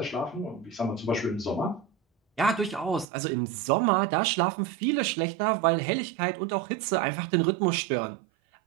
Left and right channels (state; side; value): drops out; left; at 3.1 s